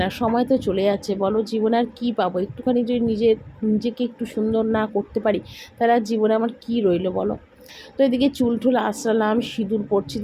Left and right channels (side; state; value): both; identical; correlation 1.00